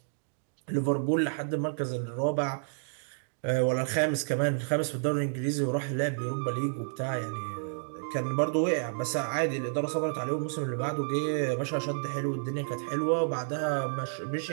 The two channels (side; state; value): left; silent; digital silence